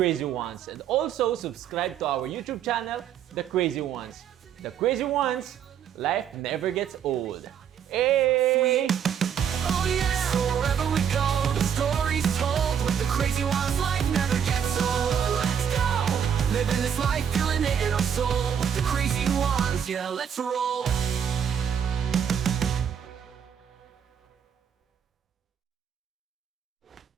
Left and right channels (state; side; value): quieter; left; 8.3 dB